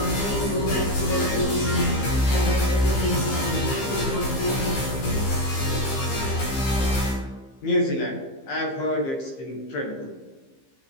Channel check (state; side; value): late; right; 15 ms